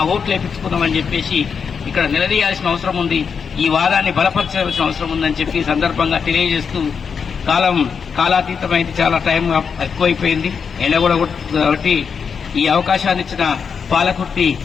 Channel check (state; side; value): quieter; right; 6.3 dB